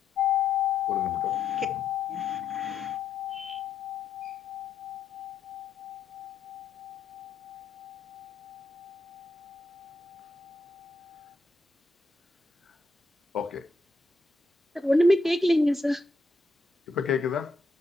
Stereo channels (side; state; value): right; quieter; 3.3 dB